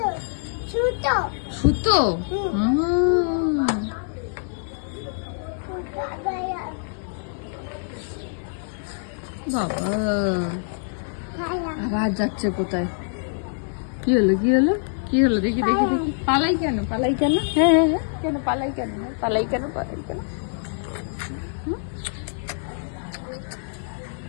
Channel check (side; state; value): right; silent; digital silence